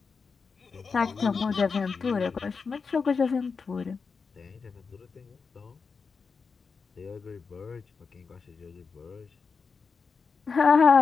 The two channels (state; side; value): quieter; right; 5.1 dB